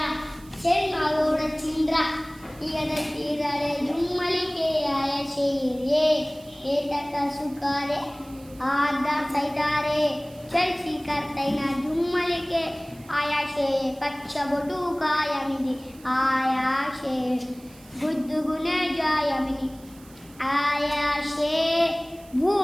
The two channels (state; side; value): noise; right; hiss, 24 dB below the sound